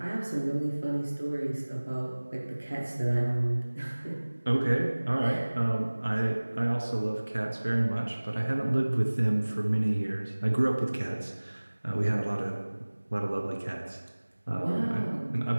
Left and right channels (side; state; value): both; inverted; correlation -1.00